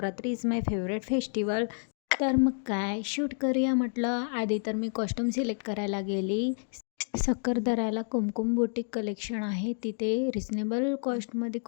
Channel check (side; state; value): right; silent; 58 dB below the other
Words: is my favourite festival. तर मग काय शूट करूया म्हटलं. आधी तर मी कॉस्ट्यूम सिलेक्ट करायला गेली. सक्करदऱ्याला कुमकुम बुटीक कलेक्शन आहे. तिथे रिजनेबल कॉस्टमध्ये